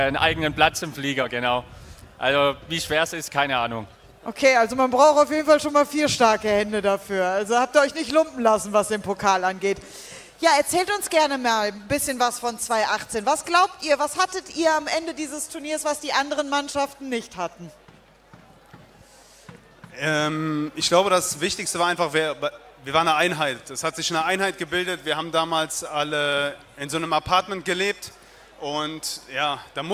eigenen Platz im Flieger, genau. Also wie schwer es ist, keine Ahnung. Okay, also man braucht auf jeden Fall schon mal 4 starke Hände dafür. Also habt ihr euch nicht lumpen lassen, was den Pokal angeht. Ja, erzählt uns gerne mal ein bisschen was von 2018. Was glaubt ihr, was hattet ihr am Ende dieses Turniers, was die anderen Mannschaften nicht hatten? Ich glaube, das Wichtigste war einfach, wir waren eine Einheit. Es hat sich eine Einheit gebildet. Wir haben damals alle in so einem Apartment gelebt und ja, da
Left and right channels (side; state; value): both; identical; correlation 1.00